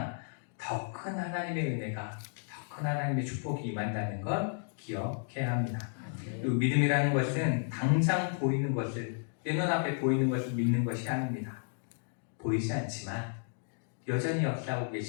더 큰 하나님의 은혜가, 더 큰 하나님의 축복이 임한다는 걸 기억해야 합니다. 그리고 믿음이라는 것은 당장 보이는 것을, 내 눈앞에 보이는 것을 믿는 것이 아닙니다. 보이지 않지만 여전히 역사하고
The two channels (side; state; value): right; silent; digital silence